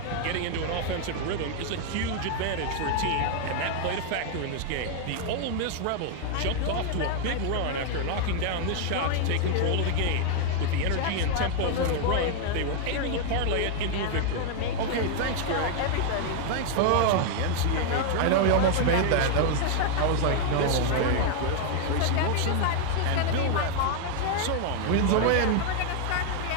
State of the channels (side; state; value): both; different; correlation 0.00